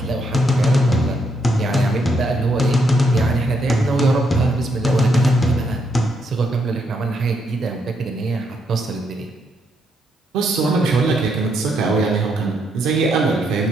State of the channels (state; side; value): normal; both; correlation 0.76